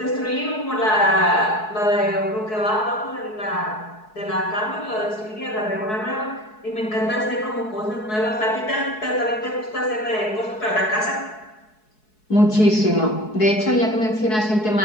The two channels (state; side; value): late; right; 4.7 ms